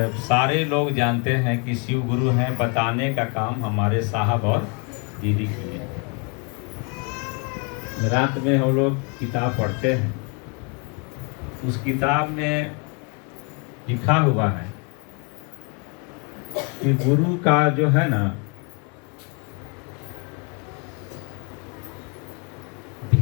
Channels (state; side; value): quieter; right; 34.8 dB